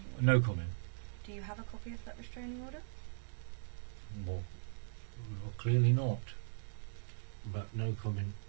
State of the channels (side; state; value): left; silent; digital silence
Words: order? No comment. Do you have a copy of that restraining order? Well, clearly not. But no comment.